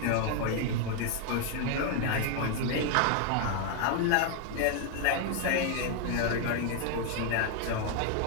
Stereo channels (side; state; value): both; different; correlation 0.00